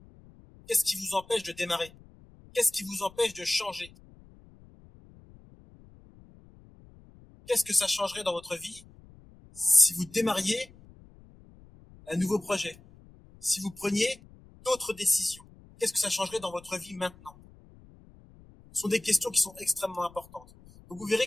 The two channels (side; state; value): left; noise; rumble, 24 dB below the sound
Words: Qu'est-ce qui vous empêche de démarrer? Qu'est-ce qui vous empêche de changer? Qu'est-ce que ça changerait dans votre vie si vous démarriez un nouveau projet? Si vous preniez d'autres décisions? Qu'est-ce que ça changerait dans votre vie maintenant? Ce sont des questions qui sont extrêmement importantes. Donc vous verrez